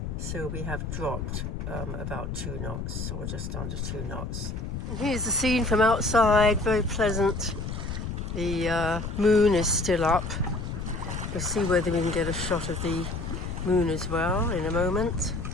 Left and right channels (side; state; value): left; noise; rumble, 5 dB below the sound